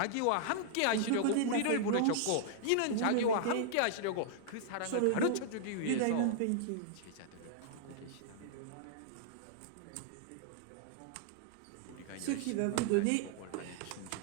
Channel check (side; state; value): both; different; correlation -0.01